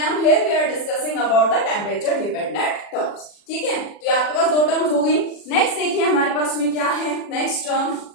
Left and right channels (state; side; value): late; right; 40 ms